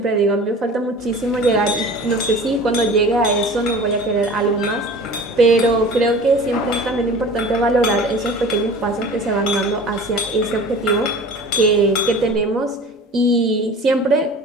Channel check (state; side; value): normal; both; correlation 0.41